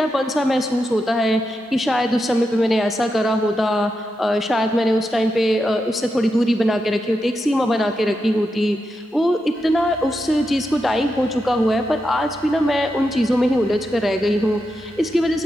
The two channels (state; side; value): normal; both; correlation 0.87